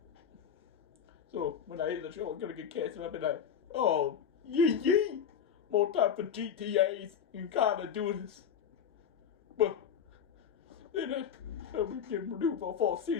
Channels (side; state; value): right; quieter; 7.9 dB